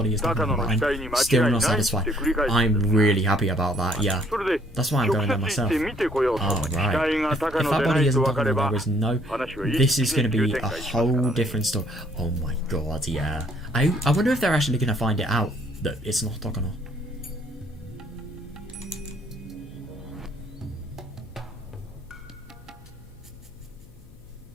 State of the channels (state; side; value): noise; left; hum, 24 dB below the sound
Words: is Takano, but I'm still not satisfied. I'm really happy about that, yeah. That's why I'm going there myself. Oh, right. If that body isn't Takano, there is no... This is going to be a whole different story. Oh my god, yeah. I wonder if they're actually going to find it out that it's not Takano.